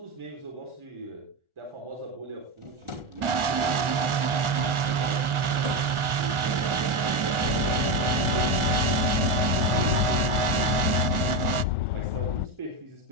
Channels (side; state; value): left; late; 1.4 ms